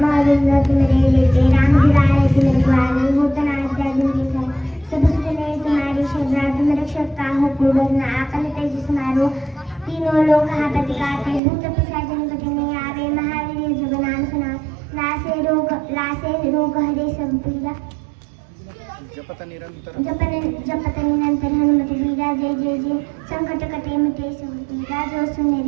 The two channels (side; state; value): left; drops out; at 11.4 s